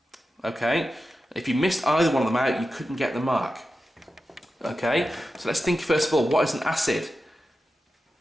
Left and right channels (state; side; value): normal; both; correlation 0.92